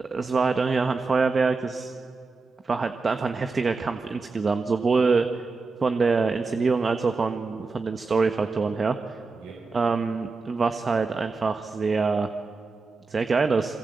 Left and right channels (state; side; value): quieter; left; 4.2 dB